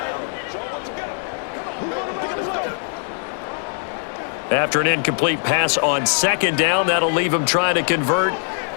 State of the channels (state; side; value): silent; right; 58 dB below the other